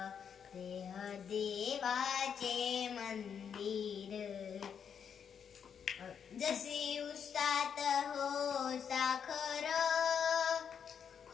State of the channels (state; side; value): quieter; right; 7.5 dB